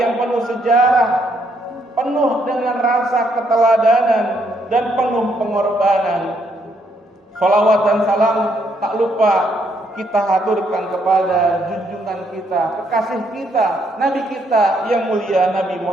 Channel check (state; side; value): normal; both; correlation 0.73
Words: yang penuh sejarah, penuh dengan rasa keteladanan dan penuh pengorbanan. Sholawat dan salam tak lupa kita haturkan kepada junjungan kita, kekasih kita, Nabi kita yang mulia Nabi